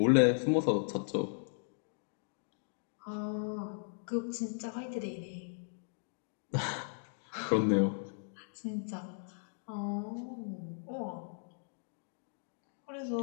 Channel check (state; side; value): silent; right; digital silence